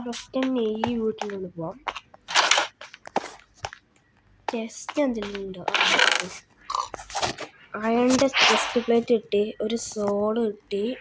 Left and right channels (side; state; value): both; identical; correlation 1.00